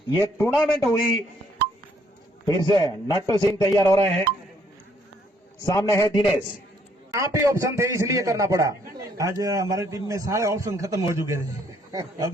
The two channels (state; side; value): normal; both; correlation 0.67